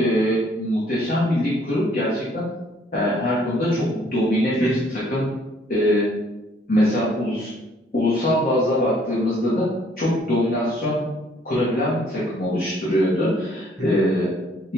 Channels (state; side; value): normal; both; correlation 0.62